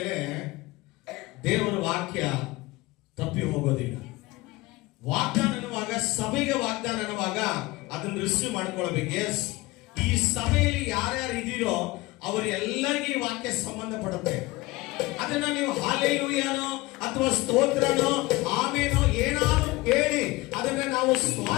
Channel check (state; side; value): quieter; right; 21.2 dB